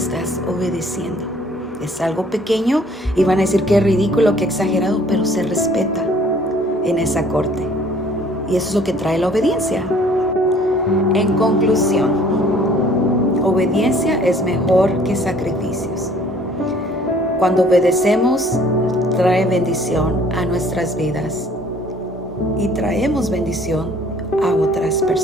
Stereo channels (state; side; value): normal; both; correlation 0.56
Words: obedeciendo. Es algo pequeño y van a decir que es ridículo, que exagerado, pero se respeta en esa corte. Y eso es lo que trae la obediencia. En conclusión, obediencia es mejor que sacrificios. Cuando obedecemos, trae bendición a nuestras vidas y traemos bendición a otras